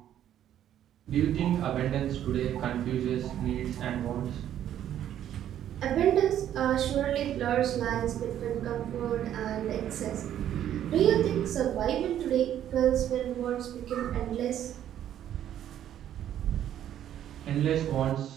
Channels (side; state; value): left; quieter; 10.9 dB